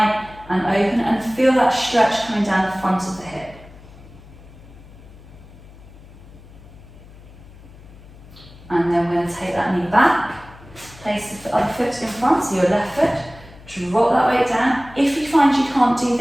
and open and feel that stretch coming down the front of the hip. And then we're going to take that knee back, place the other foot in front, so your left foot, drop that weight down. If you find you can't do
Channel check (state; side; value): noise; left; hum, 20 dB below the sound